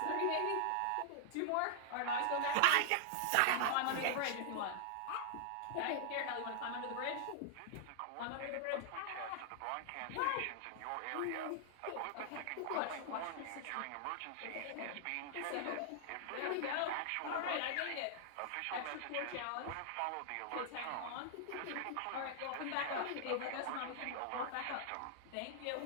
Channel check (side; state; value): both; different; correlation -0.01